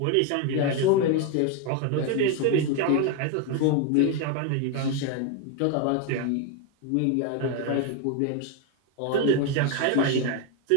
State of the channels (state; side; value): different; both; correlation 0.01